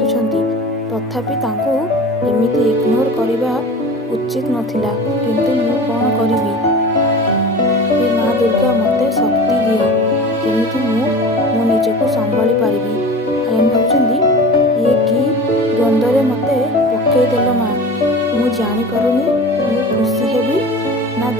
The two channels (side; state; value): both; normal; correlation 0.35